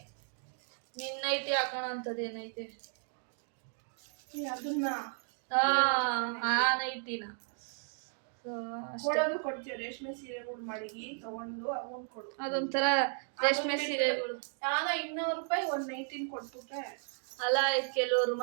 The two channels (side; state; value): left; silent; 55 dB below the other